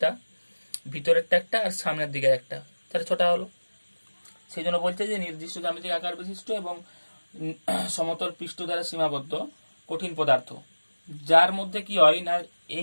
ভিতরেরটা একটা, আর সামনের দিকে একটা, তাহলে 6টা হলো। সেই জন্য বলছে যে নির্দিষ্ট জ্যামিতিক আকার বিশিষ্ট এবং সমতল পৃষ্ঠ দ্বারা সীমাবদ্ধ কঠিন পদার্থ, যার মধ্যে কি হয় না,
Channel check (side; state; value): both; inverted; correlation -1.00